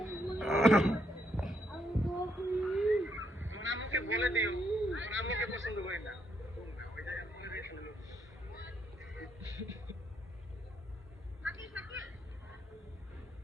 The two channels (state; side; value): normal; both; correlation 0.75